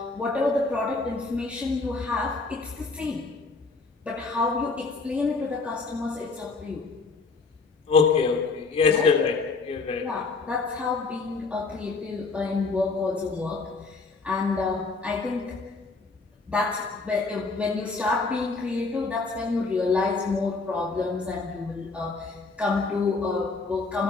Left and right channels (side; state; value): right; quieter; 4.0 dB